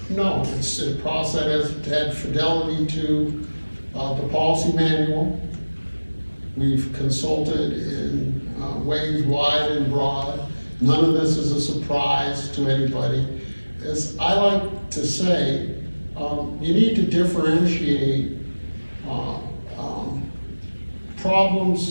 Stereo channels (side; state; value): both; inverted; correlation -1.00